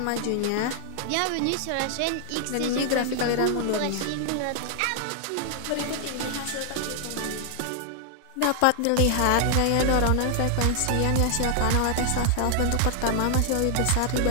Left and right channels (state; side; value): different; both; correlation 0.00